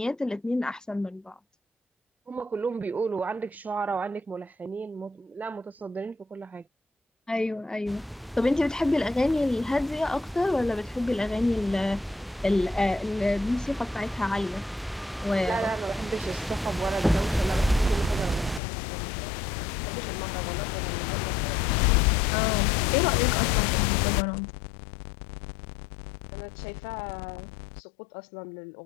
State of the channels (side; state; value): right; drops out; at 18.6 s